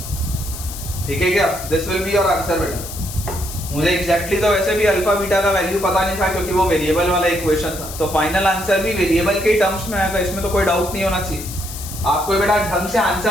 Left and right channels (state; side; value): noise; left; hiss, 11 dB below the sound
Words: ठीक है क्या? This will be your answer बेटा। मुझे एग्जैक्टली तो वैसे भी अल्फा बीटा का वैल्यू पता नहीं था क्योंकि वो वेरिएबल वाला इक्वेशन था, तो फाइनल आंसर भी वेरिएबल के टर्म्स में आएगा, इसमें तो कोई डाउट नहीं होना चाहिए। आपको बेटा ढंग से